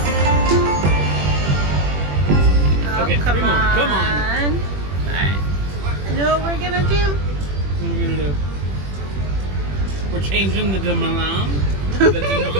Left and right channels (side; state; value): left; late; 21 ms